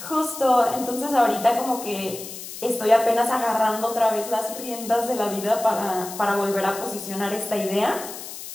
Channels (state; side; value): noise; left; hiss, 11 dB below the sound